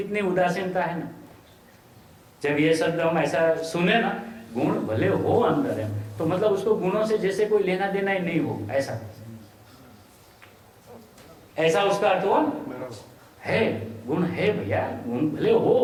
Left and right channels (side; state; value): both; identical; correlation 1.00